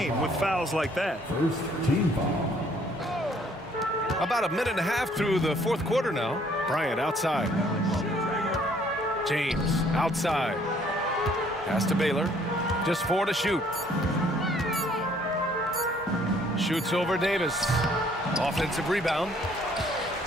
with fouls like that. First team foul. About a minute and a half through the fourth quarter now. Bryant outside. James outside. Pass to Baylor. Just 4 to shoot. Shoots over Davis. Offensive rebound.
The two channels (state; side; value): normal; both; correlation 0.62